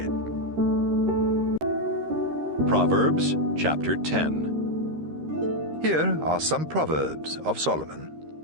Proverbs chapter 10. Here are some Proverbs of Solomon.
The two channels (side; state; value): left; late; 13 ms